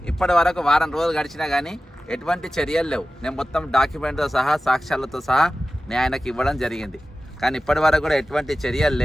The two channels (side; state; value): both; normal; correlation 0.95